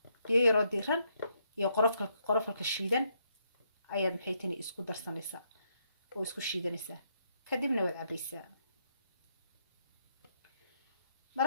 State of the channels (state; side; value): inverted; both; correlation -0.76